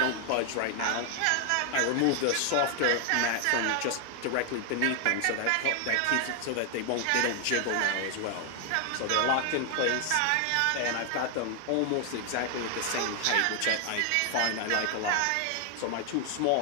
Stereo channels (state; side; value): different; both; correlation 0.00